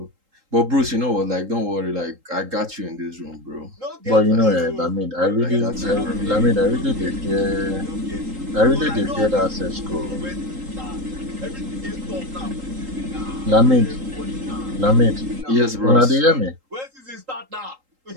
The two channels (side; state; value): left; late; 3.8 ms